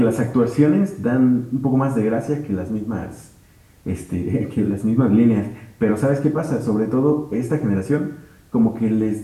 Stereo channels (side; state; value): both; identical; correlation 1.00